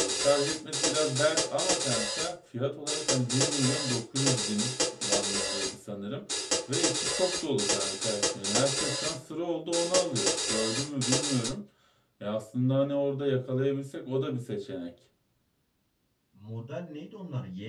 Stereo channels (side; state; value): both; identical; correlation 1.00